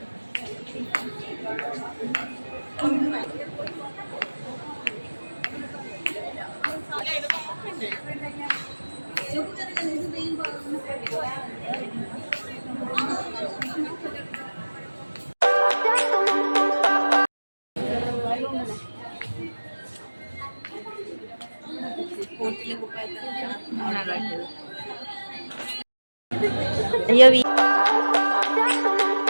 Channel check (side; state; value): both; inverted; correlation -1.00